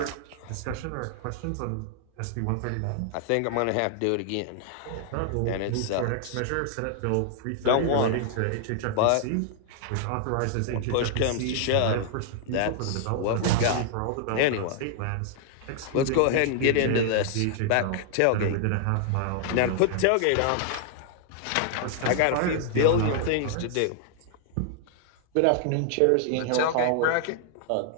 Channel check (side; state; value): both; different; correlation 0.00